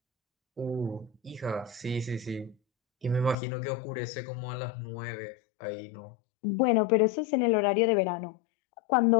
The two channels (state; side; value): drops out; right; at 3.4 s